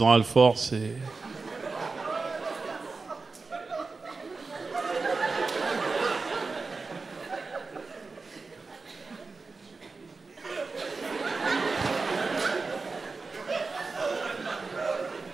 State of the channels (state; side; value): quieter; left; 4.1 dB